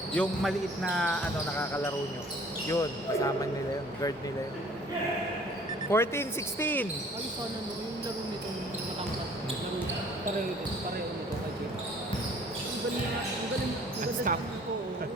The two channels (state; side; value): normal; both; correlation 0.53